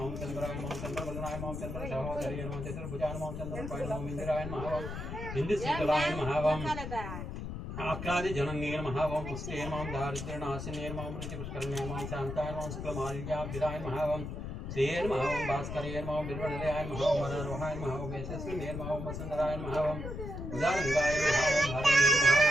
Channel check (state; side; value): noise; left; rumble, 6 dB below the sound